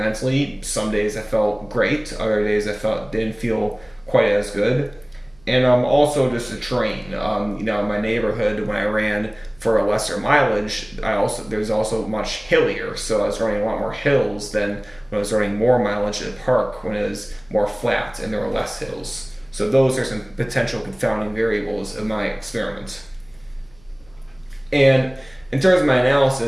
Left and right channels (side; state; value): right; noise; hum, 28 dB below the sound